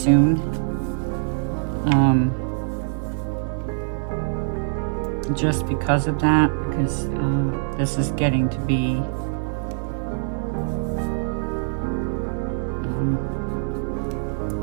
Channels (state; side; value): silent; left; digital silence